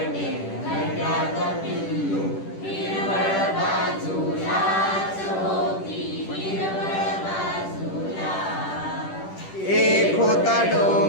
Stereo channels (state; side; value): late; right; 10 ms